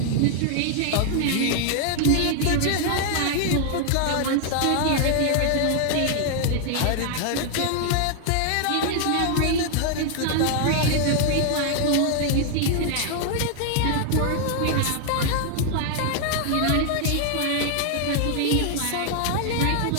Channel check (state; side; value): different; both; correlation 0.00